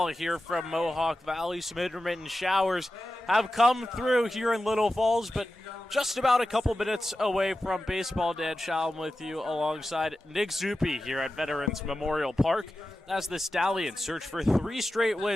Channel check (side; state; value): both; normal; correlation 0.92